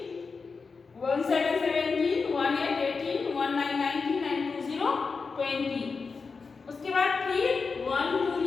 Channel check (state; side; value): quieter; right; 4.8 dB